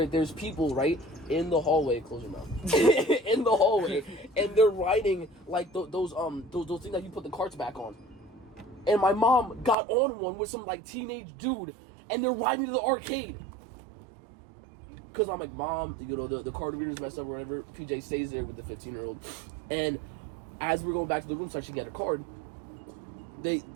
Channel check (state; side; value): drops out; left; at 9.8 s